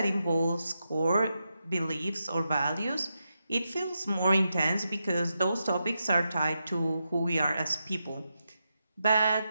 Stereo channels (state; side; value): inverted; both; correlation -0.87